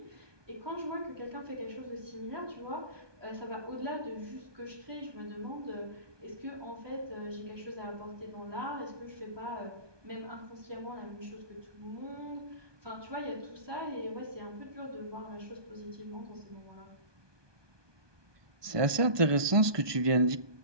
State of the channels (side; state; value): left; late; 1.2 ms